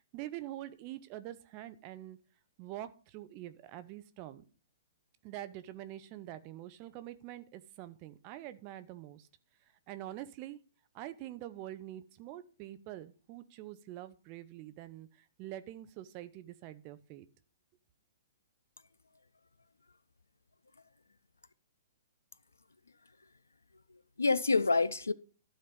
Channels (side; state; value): both; inverted; correlation -0.73